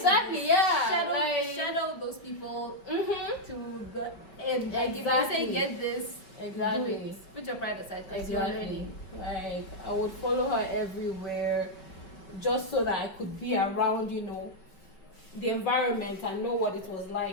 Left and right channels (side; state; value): right; late; 5.4 ms